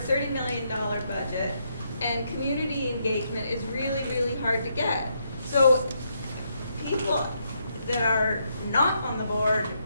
million budget, and community engagement is really, really hard to get. So people that are not on the board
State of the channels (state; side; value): inverted; both; correlation -0.77